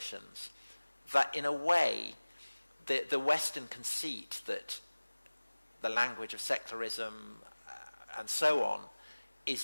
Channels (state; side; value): inverted; both; correlation -1.00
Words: that, in a way, the Western conceit that the language of secularism and so on